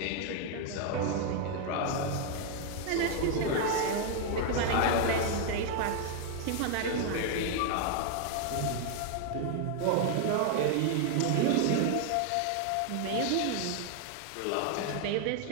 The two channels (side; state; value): both; different; correlation 0.00